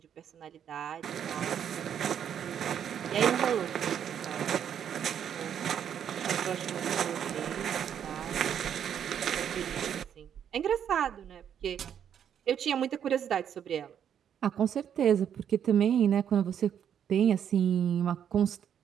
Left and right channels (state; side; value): quieter; left; 8.9 dB